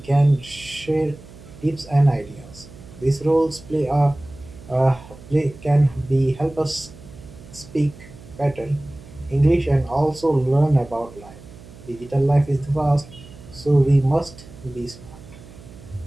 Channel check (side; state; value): right; noise; hum, 19 dB below the sound